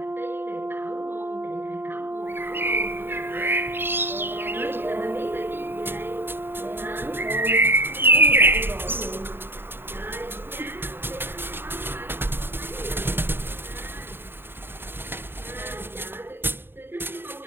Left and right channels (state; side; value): late; left; 0.10 ms